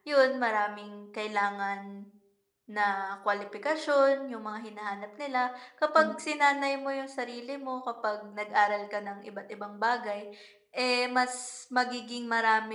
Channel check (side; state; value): both; identical; correlation 1.00